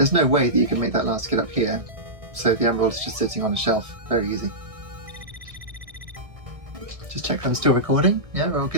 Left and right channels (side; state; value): left; late; 1.6 ms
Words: no way that you can make that last get up here, so the Emerald is just sitting on a shelf. Very easy. Just check that I'm still recording. Yeah, we're all